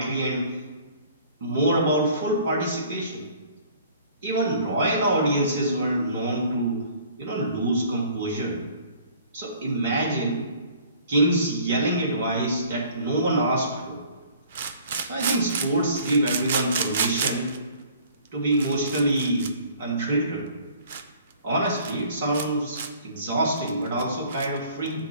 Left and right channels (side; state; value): both; inverted; correlation -0.53